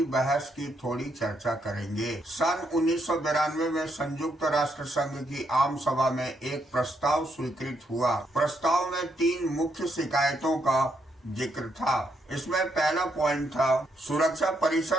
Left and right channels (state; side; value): normal; both; correlation 0.77